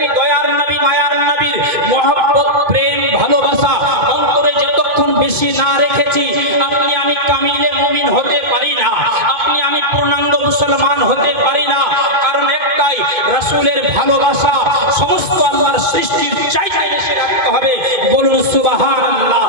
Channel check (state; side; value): late; left; 2.2 ms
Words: দয়ার নবী মায়ার নবীর মহব্বত, প্রেম, ভালোবাসা অন্তরে যতক্ষণ বেশি না রেখেছি, আপনি আমি কামিলে মুমিন হতে পারি না, আপনি আমি পূর্ণাঙ্গ মুসলমান হতে পারি না। কারণ একটাই, রাসূলের ভালোবাসা সমস্ত আল্লাহর সৃষ্টির চাইতে বেশি রাখতে হবে। বলুন সুবহানাল্লাহ।